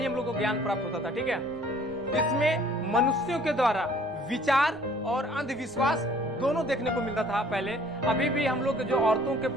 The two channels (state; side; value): normal; both; correlation 0.55